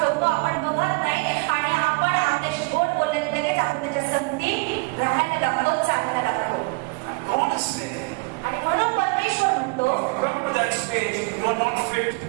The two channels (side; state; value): left; quieter; 29.2 dB